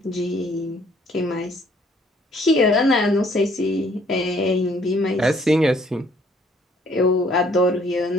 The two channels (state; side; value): normal; both; correlation 0.62